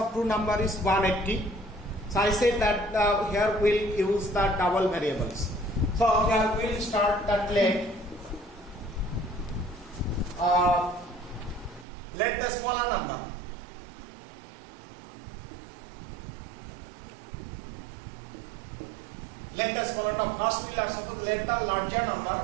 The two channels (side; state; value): left; drops out; at 11.9 s